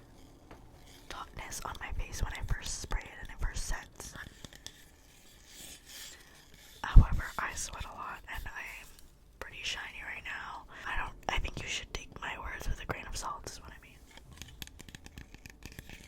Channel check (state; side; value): identical; both; correlation 1.00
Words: tautness on my face when I first spray it and it first sets. However, I sweat a lot and I'm pretty shiny right now. I think you should take my words with a grain of salt is what I mean.